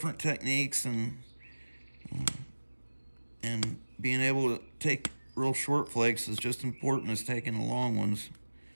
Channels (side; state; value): both; inverted; correlation -1.00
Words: techniques, and being able to take real short flakes is just important as taking the long ones